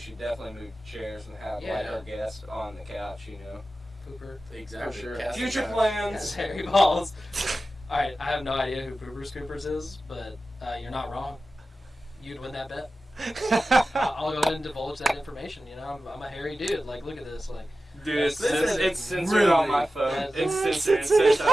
definitely move chairs and have like Yeah. our guests on the couch. Pooper. Exactly. For sure. Casting Future couch. Yes, plans. hairy balls. Alright, I have no idea who Pooper Scoopers is, but you're not wrong. You'd win that bet. I'll go ahead and divulge that information. I'm a hairy dude. Like, look at this. Like, Dude, it's censored really- on my phone. that's- It's censored. It says,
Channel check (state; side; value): normal; both; correlation 0.94